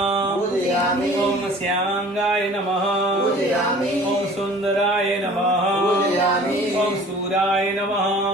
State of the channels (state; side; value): normal; both; correlation 0.47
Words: पूजयामि ओम श्यांगाय नमः पूजयामि ओम सुंदराय नमः पूजयामि ओम सूराय नमः